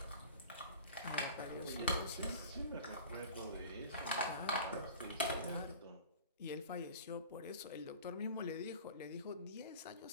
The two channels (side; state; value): both; inverted; correlation -0.41